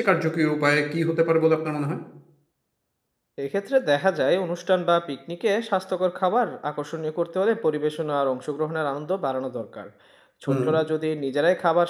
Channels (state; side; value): identical; both; correlation 1.00